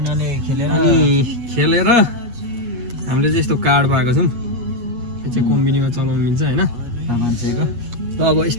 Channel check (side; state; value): left; late; 8.3 ms